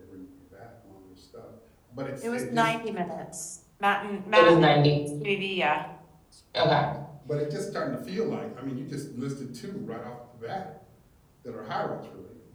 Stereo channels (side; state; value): both; identical; correlation 1.00